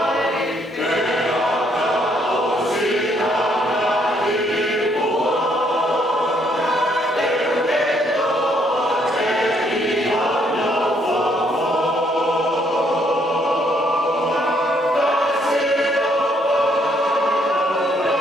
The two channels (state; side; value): normal; both; correlation 0.69